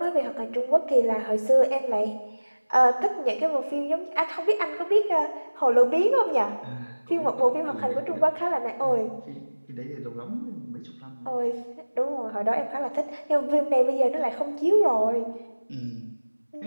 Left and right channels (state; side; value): inverted; both; correlation -1.00